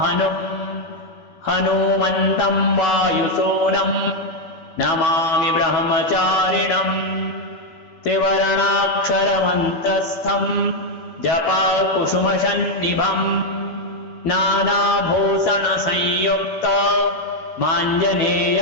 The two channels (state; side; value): late; right; 12 ms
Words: हनुमन्तं वायुसूनम् नमामि ब्रह्मचारिणम् त्रिवर्णाक्षरमन्त्रस्थम् जपाकुसुमसन्निभम् नानाभूषणसंयुक्त